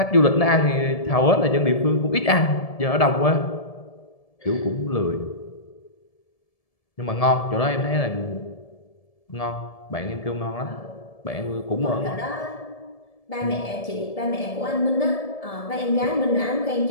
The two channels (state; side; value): late; right; 1.7 ms